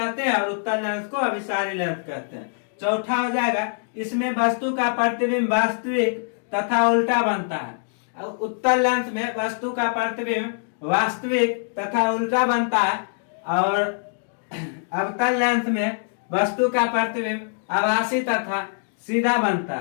हैं और उत्तल लेंस को अभिसारी लेंस कहते हैं। चौथा हो जाएगा, इसमें वस्तु का प्रतिबिंब वास्तविक तथा उल्टा बनता है। उत्तल लेंस में वस्तु का प्रतिबिंब वास्तविक तथा उल्टा बनता है और अवतल लेंस में वस्तु का प्रतिबिंब आभासी तथा सीधा बनता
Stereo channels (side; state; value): right; silent; digital silence